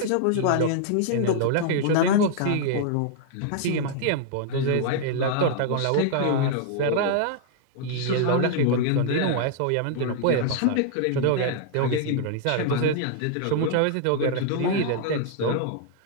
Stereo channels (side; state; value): both; different; correlation -0.01